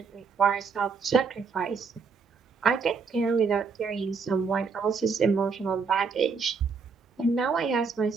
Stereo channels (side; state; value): left; quieter; 5.2 dB